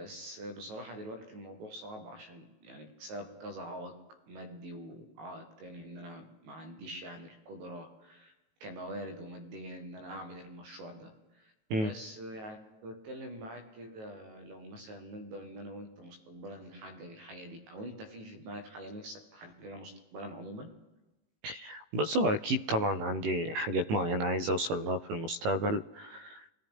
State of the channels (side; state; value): left; late; 19 ms